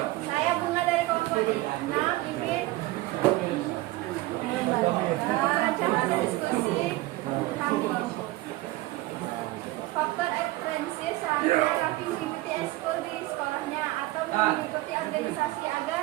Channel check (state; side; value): quieter; left; 18.6 dB